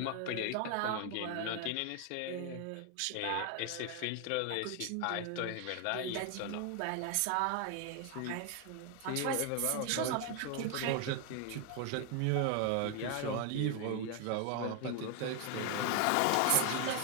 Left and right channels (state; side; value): different; both; correlation 0.01